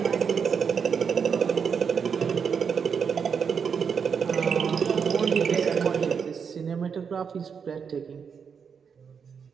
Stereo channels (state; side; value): quieter; left; 6.5 dB